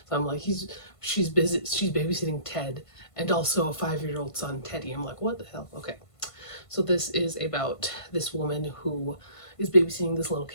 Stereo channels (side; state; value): right; late; 1.5 ms